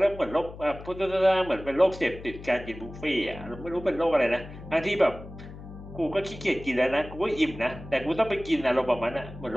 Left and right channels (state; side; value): noise; left; hum, 14 dB below the sound